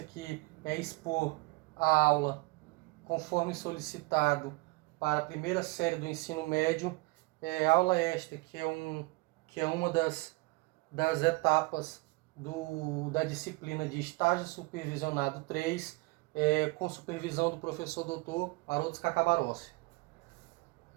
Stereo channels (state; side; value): quieter; left; 24.4 dB